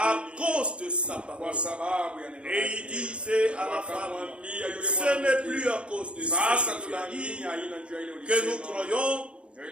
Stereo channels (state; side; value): late; left; 0.057 ms